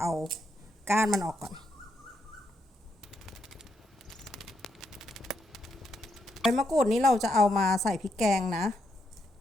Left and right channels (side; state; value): both; normal; correlation 0.79